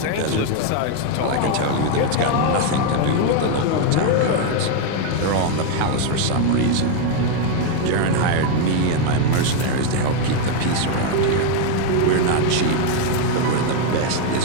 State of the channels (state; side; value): different; both; correlation 0.01